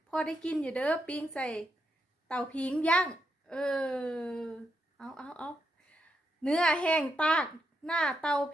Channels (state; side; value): normal; both; correlation 0.82